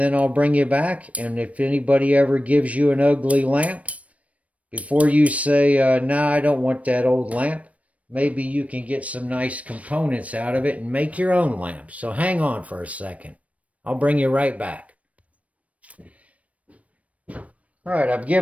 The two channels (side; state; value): left; late; 0.066 ms